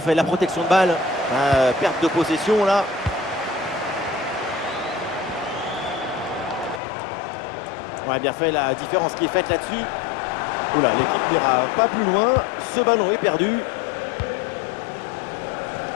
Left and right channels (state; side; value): drops out; right; at 6.8 s